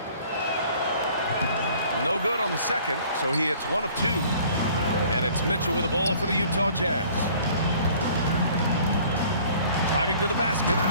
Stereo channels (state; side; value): inverted; both; correlation -0.53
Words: No good on the second, so he hits 1 of 2. And it's Mitchell with the ball for the Utah Jazz. Driving to the basket.